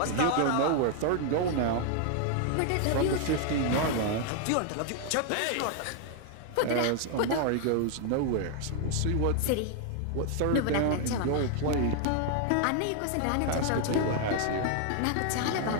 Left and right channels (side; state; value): both; different; correlation 0.00